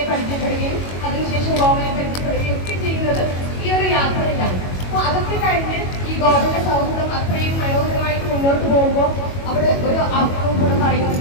പരിചയപ്പെടുകയും അതിനുശേഷം ഗോവനെ പരിചയപ്പെടുകയും ഒക്കെ ചെയ്യുന്നത് ഈ ഒരു യാത്രയിലാണ്. അപ്പൊ അതൊക്കെ കഴിഞ്ഞ് ഈ ഗോവന്റെ സൗഹൃദം അത്രയും മനോഹരമായിട്ട് മുന്നോട്ട് പോകുമ്പോൾ അവിടെ ഒരു അർത്ഥവും കൂടെ പറയുന്നത്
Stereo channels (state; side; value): late; right; 22 ms